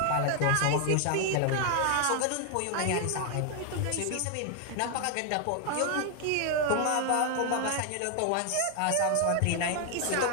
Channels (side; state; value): both; different; correlation 0.00